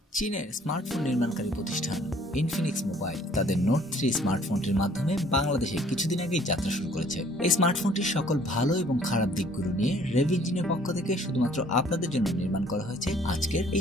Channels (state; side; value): normal; both; correlation 0.58